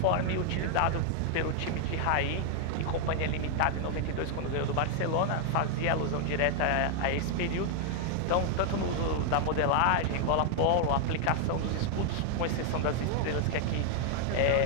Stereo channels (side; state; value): both; different; correlation 0.00